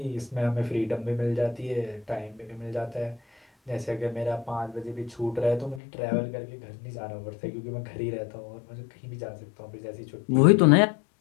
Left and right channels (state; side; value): drops out; right; at 5.8 s